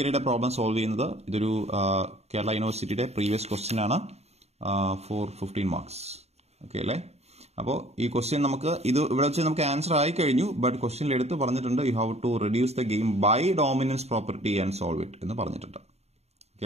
പ്രോബ്ലം സോൾവ് ചെയ്യുന്നത്. ഇതൊരു കേരള യൂണിവേഴ്സിറ്റിയുടെ പ്രീവിയസ് ക്വസ്റ്റ്യൻ ആണ്, 15 marks. ഓക്കെ അല്ലേ? അപ്പോൾ ഈ ക്വസ്റ്റ്യൻ നമുക്ക് ഇവിടെ വെച്ച് നമുക്ക് ആൻസർ ആയി കഴിഞ്ഞു, ബട്ട് ക്വസ്റ്റ്യനിൽ എടുത്ത് പറഞ്ഞിട്ടുണ്ട് you have to reduce the game by dominance property and solve it എന്ന് പറഞ്ഞിട്ടുണ്ട്. ഓക്കെ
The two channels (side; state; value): left; late; 0.31 ms